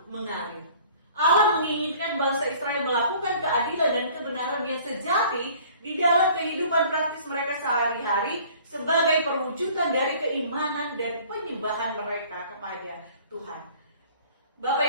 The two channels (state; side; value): inverted; both; correlation -0.51